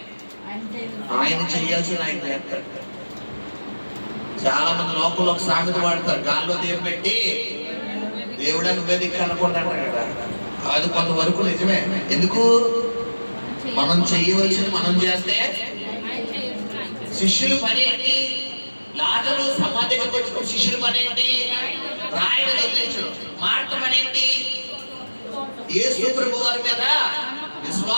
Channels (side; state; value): both; inverted; correlation -1.00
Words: ఆయన చెయ్యాల్సింది ఆయన చేస్తాడు. చాలా మంది లోపల ఒక సామెత వాడతారు, గాల్లో దీపం పెట్టి దేవుడా నువ్వే దిక్కు అనుకుంటాడు కదా. అది కొంతవరకు నిజమే. ఎందుకు? మనం చెయ్యవలసింది మనం చేస్తే. శిష్యులు పని ఏంటి? లాజరు సమాధి దగ్గరికి వచ్చిన శిష్యుల పని ఏంటి? రాయలు వదిలించడం. మార్త పని ఏంటి? యేసు ప్రభు వారి మీద